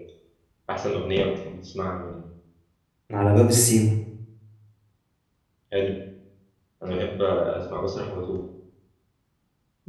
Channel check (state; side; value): identical; both; correlation 1.00